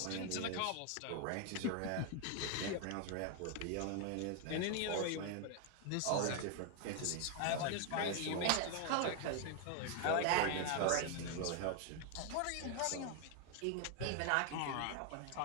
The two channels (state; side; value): different; both; correlation 0.01